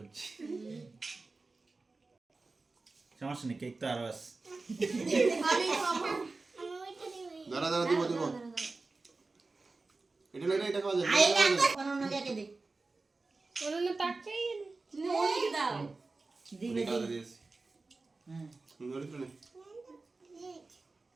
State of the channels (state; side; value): quieter; left; 3.6 dB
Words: সমস্যা নেই কেক তো আরো আছে আমি খাবো আমি ওইটা দিই দাঁড়া দাঁড়া দিব দিব এটা লইলে এটা খাওয়া যাবে আই না কোন নাকে দে ওনা তাকাই অনেক দাও। দিবে খাওয়া দিয়েছি হুম ধরে তো নেই